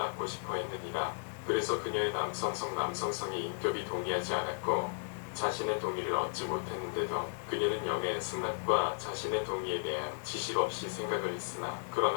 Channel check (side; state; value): right; silent; digital silence